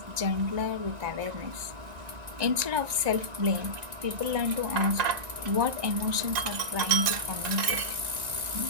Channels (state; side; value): late; left; 1.9 ms